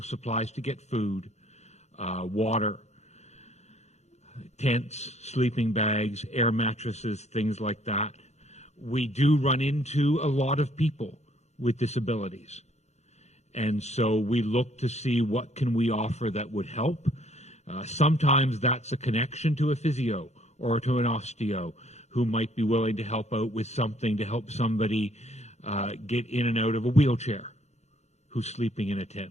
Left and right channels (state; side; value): late; right; 0.32 ms